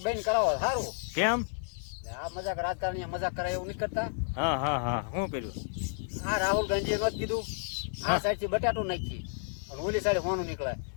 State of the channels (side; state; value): right; silent; digital silence